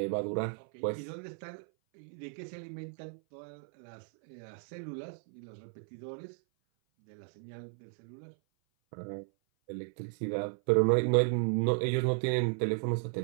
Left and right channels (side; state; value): left; silent; 55 dB below the other